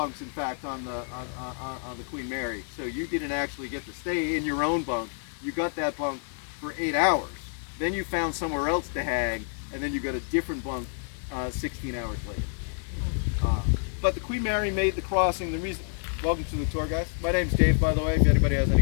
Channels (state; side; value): silent; right; 59 dB below the other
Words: in fact, on the Queen Mary. So you didn't actually get to stay in your own bunk. You got that bunk for 8 hours. Then you found somewhere else to hang, and then you got a different bunk 16 hours later. But the Queen Mary made the crossing. Welcome to the tour, guys. My name's Dave, by the way, if anybody has any